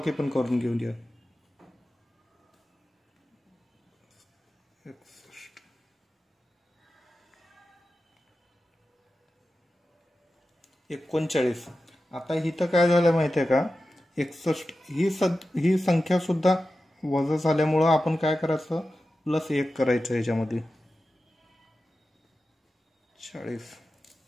पण करून घेऊया. 39. आता इथं काय झालं माहिती आहे का, 61 ही संख्या सुद्धा वजा झाल्यामुळं आपण काय करायचं, +1 करायचं याच्यामध्ये 40.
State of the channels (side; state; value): both; normal; correlation 0.93